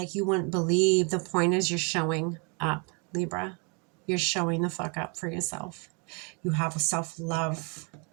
you wouldn't believe, the point is you're showing up, Libra. You're showing the fuck up for yourself. You have a self-love.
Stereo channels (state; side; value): quieter; left; 33.9 dB